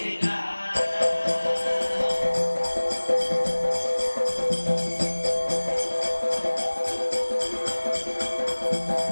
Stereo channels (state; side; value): inverted; both; correlation -1.00